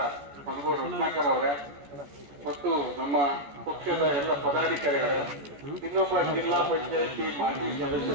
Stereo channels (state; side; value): late; left; 14 ms